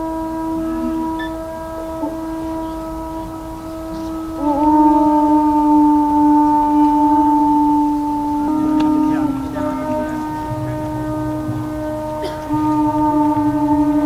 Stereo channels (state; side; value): identical; both; correlation 1.00